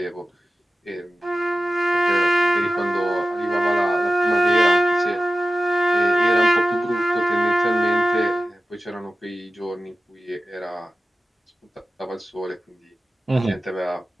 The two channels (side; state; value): both; normal; correlation 0.94